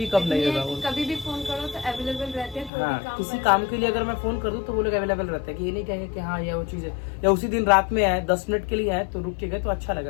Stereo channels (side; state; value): right; drops out; at 2.7 s